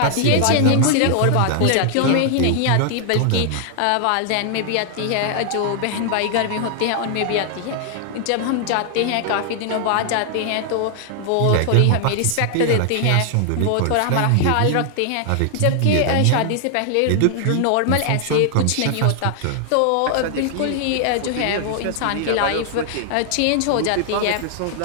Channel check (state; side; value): different; both; correlation 0.00